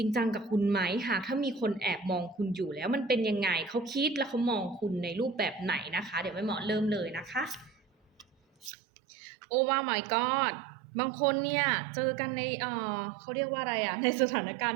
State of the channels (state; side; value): drops out; left; at 8.7 s